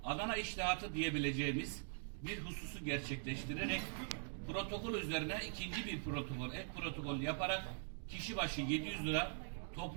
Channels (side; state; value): left; silent; digital silence